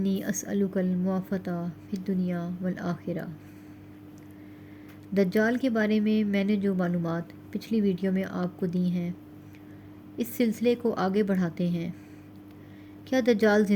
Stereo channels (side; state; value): both; identical; correlation 1.00